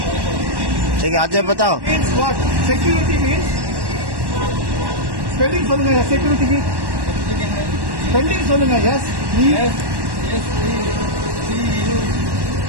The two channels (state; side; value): late; left; 1.1 ms